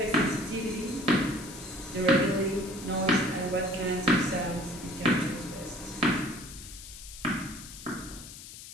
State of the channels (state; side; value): noise; left; hiss, 14 dB below the sound